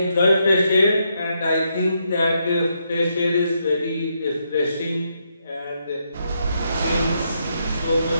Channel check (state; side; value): inverted; both; correlation -0.79